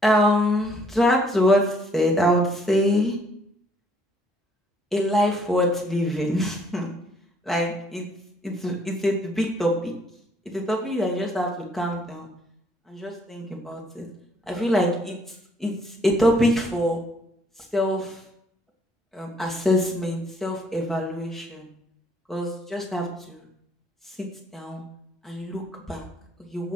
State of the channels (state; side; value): normal; both; correlation 0.65